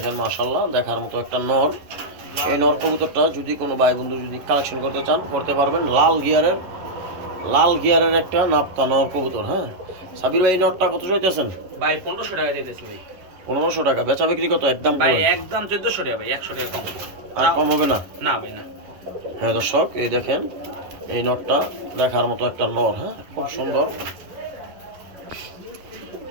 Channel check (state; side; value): late; left; 11 ms